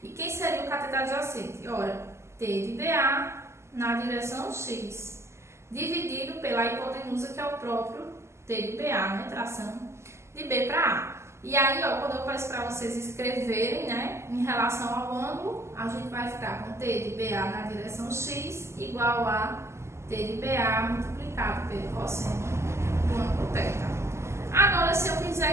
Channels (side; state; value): left; late; 0.13 ms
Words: E quem seria o cateto adjacente? Ora, T de BA na direção x, dividido pela hipotenusa, que é o próprio T de BA, né? Tração de B para A. E aí, ó, quando eu peço para vocês escreverem, né, em relação ao ângulo, a gente vai ficar com T de BA na direção x igual a T de BA multiplicado pelo cosseno do ângulo θ. Agora, se eu